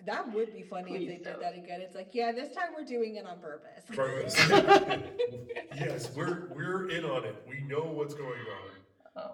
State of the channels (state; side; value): identical; both; correlation 1.00